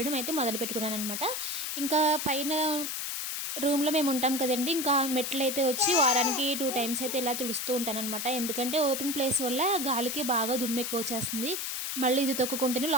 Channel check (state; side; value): noise; left; hiss, 3 dB below the sound